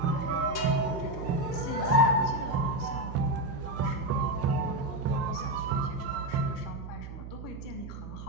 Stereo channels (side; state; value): right; noise; hum, 10 dB below the sound